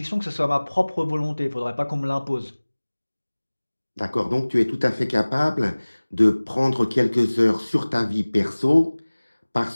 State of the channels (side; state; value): both; inverted; correlation -1.00